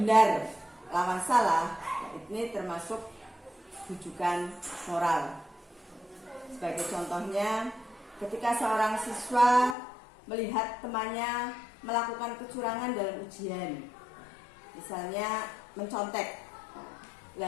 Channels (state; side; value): drops out; right; at 9.8 s